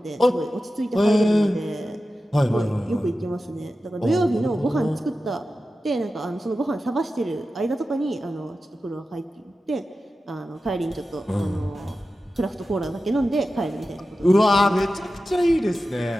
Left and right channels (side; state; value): both; normal; correlation 0.93